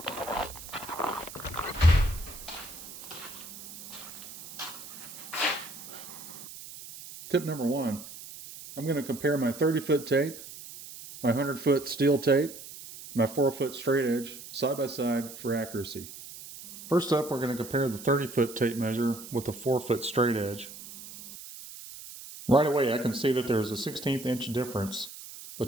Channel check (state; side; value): noise; right; hiss, 14 dB below the sound